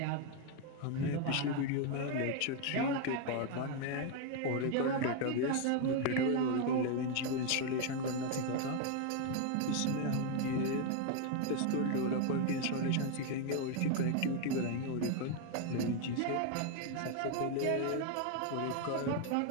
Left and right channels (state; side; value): different; both; correlation 0.01